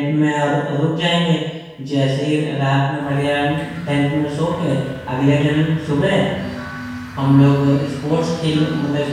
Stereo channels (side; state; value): both; identical; correlation 1.00